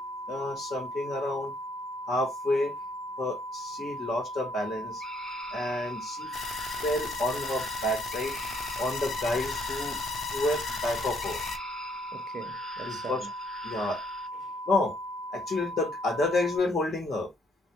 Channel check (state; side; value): normal; both; correlation 0.68